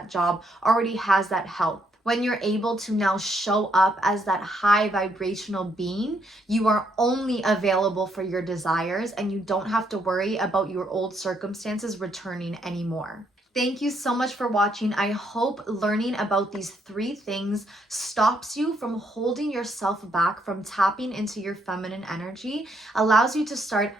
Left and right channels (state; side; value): normal; both; correlation 0.73